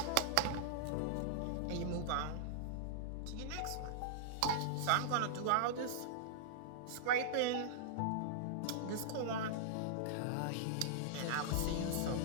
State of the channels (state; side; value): different; both; correlation -0.02